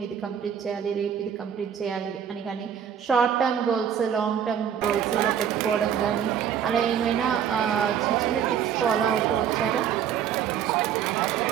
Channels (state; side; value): quieter; left; 8.7 dB